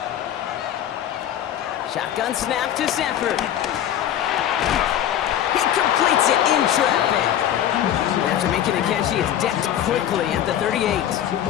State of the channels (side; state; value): right; quieter; 10.8 dB